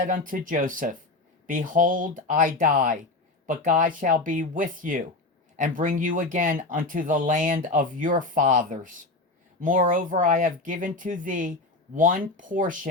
unto Joseph, Behold, I die, but God shall be with you, and bring you again unto the land of your fathers. Moreover, I have given to thee one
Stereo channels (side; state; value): right; quieter; 3.2 dB